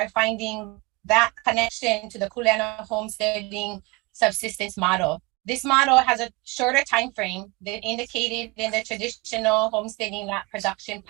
finding that connection to the kuleana homesteading subsistence model. This model has a shorter time frame than indicated in the traditional homesteading lot production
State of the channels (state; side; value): quieter; left; 24.8 dB